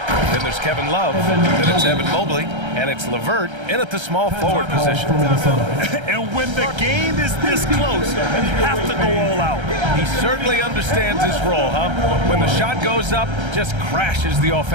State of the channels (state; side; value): late; left; 1.3 ms